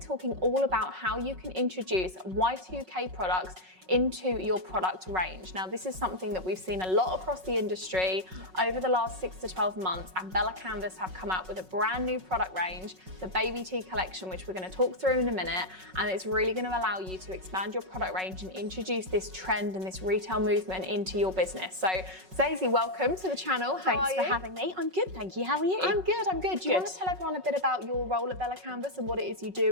all about how you can introduce Y2K products into your product range. Now this is something that we've seen a lot across the industry over the last 6 to 12 months, and Bella Canvas have come out with a brand new product range, the Baby Tee collection, which we're going to talk through in a minute, and it's really going to allow you to expand your product range and introduce this trend and this retail movement into your business. So Zazie, welcome to the channel. How are you? Thanks for having me. I'm good, thank you. How are you? I'm good. Do you want to tell everyone a bit about your role at Bella Canvas and what it is you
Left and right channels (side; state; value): left; late; 5.4 ms